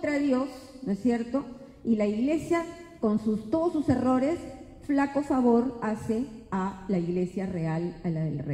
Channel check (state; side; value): identical; both; correlation 1.00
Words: Dios, ¿no es cierto? Y la Iglesia, con todos sus errores, flaco favor hace a la Iglesia real, a la del